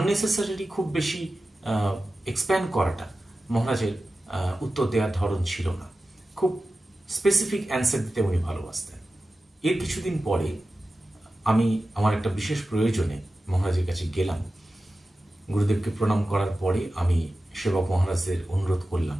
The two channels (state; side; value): normal; both; correlation 0.94